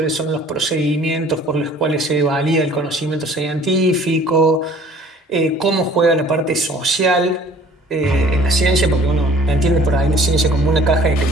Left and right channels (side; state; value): both; normal; correlation 0.52